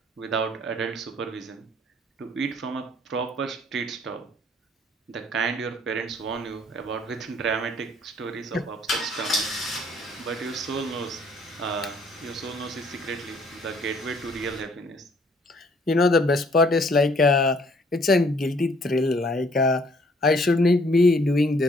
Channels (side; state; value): both; normal; correlation 0.62